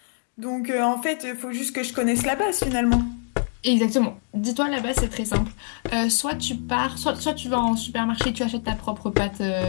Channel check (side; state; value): right; silent; 62 dB below the other